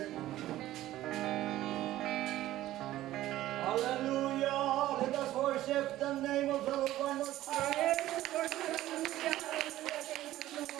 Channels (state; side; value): quieter; left; 14.8 dB